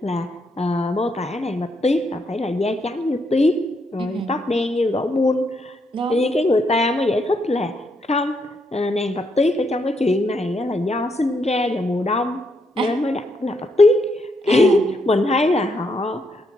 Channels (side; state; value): both; normal; correlation 0.77